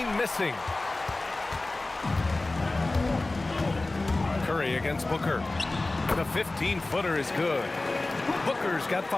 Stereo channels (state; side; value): quieter; right; 3.0 dB